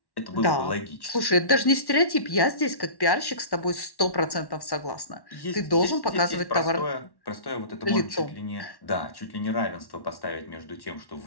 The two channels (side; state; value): right; late; 1.1 ms